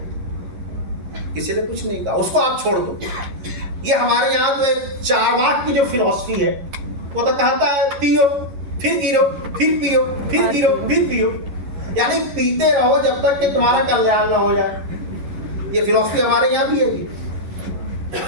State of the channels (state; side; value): late; left; 11 ms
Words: किसी ने कुछ नहीं कहा, उसको आप छोड़ दो। ये हमारे यहाँ तो एक चारवाक की जो फिलॉसफी है, वो तो कहता है पियो फिर गिरो, फिर पियो, फिर गिरो, फिर पियो, यानी पीते रहो जब तक कि तुम्हारा कल्याण ना हो जाए। ये फिलॉसफी हमारे यहाँ भी है।